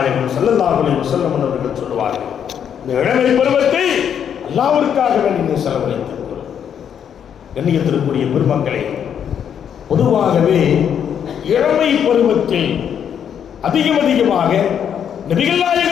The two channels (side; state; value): right; quieter; 8.5 dB